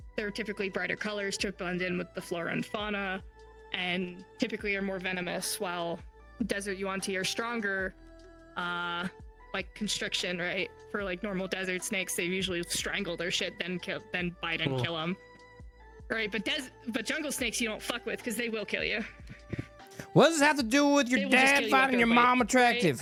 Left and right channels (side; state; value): both; identical; correlation 1.00